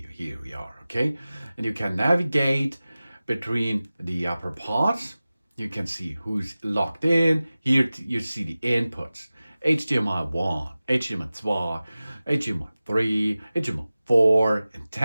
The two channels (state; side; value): inverted; both; correlation -0.97